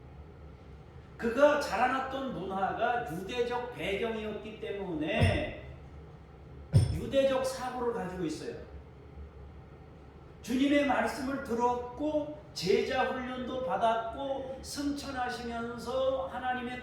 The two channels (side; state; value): both; identical; correlation 1.00